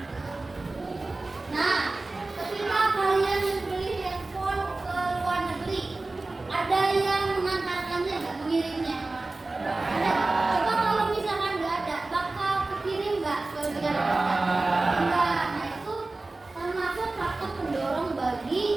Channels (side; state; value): left; quieter; 3.2 dB